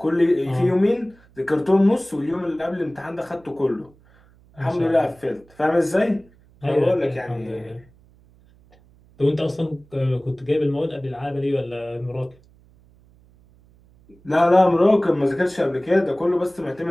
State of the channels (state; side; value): noise; right; hum, 29 dB below the sound